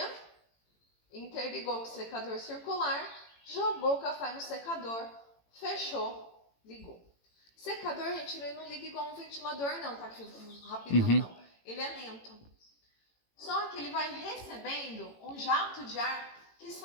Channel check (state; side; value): late; right; 18 ms